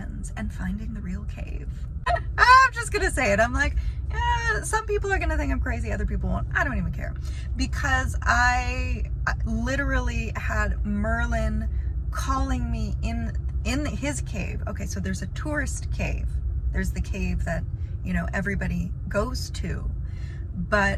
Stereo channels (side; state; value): both; identical; correlation 1.00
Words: and finding the real cave. I'm just gonna say it. I'm like, some people are gonna think I'm crazy, other people won't. I don't even care, because I literally had Merlin calling me in his cave. Okay, so there's a tourist cave. There's the cave that, you know, everybody goes to,